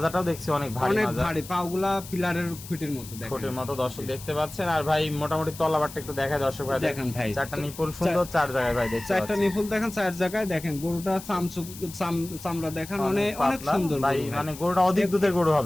দেখছি অনেক ভারী, অনেক মাজা ভারী, পাগুলা পিলারের খুঁটির মতো দেখেন, খুঁটির মতো দর্শক দেখতে পাচ্ছেন। আর ভাই মোটামুটি তলাবারটা একটু দেখায় দর্শক ভাই। দেখেন ভাই, 4টা নিপুল সুন্দর, 4 জায়গায় ভাই দেখতে পাচ্ছেন। 4টা নিপুল দেখেন 4 জায়গায়। দেখেন গরুটা চামড়া দেখেন, অনেক সুন্দর ভাই, মানে গরুটা অধিক দুধের গরু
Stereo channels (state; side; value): noise; left; hiss, 15 dB below the sound